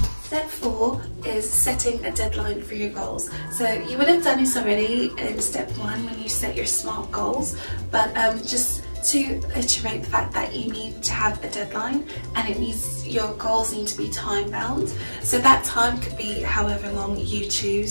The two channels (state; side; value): inverted; both; correlation -1.00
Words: Step 4 is setting a deadline for your goals. So you would have done this already in step 1 when you set your SMART goals, but just to iterate the fact that you need to have a deadline, and it needs, your goals need to be time bound. So that time could be however long you